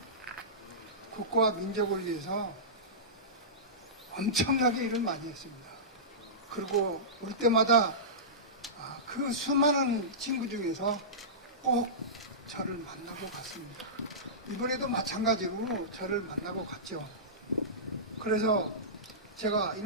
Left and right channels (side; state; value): both; normal; correlation -0.19